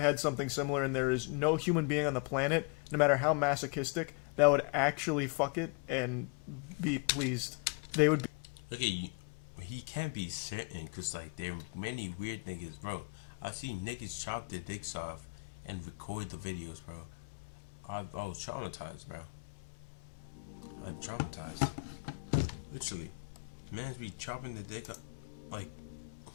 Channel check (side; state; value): right; quieter; 35.2 dB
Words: something similar, and there is no human being on the planet, no matter how masochistic, that would actually fuck it and be pleased. They would be. He can't be certain because like there are many weird niggas, bro. I see niggas chop their dicks off and record the videos, bro. I was traumatized, bro. I'm traumatized. Literally, man be chopping the dick up like.